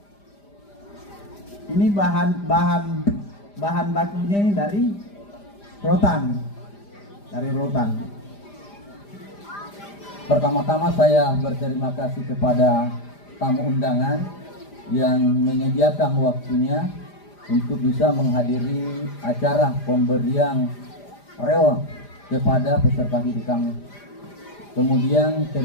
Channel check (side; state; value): right; late; 5.0 ms